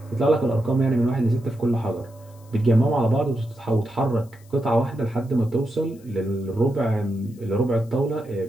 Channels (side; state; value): left; noise; hiss, 29 dB below the sound